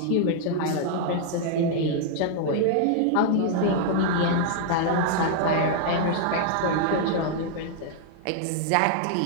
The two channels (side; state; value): both; different; correlation 0.00